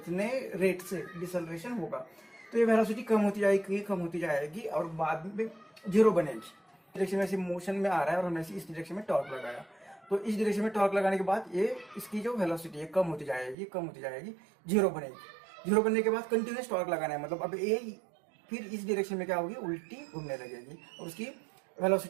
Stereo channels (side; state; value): left; drops out; at 13.6 s